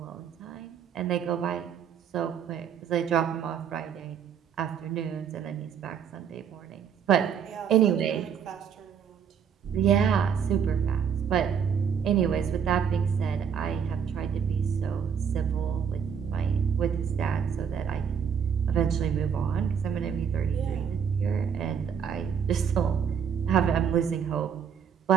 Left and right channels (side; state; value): left; quieter; 7.5 dB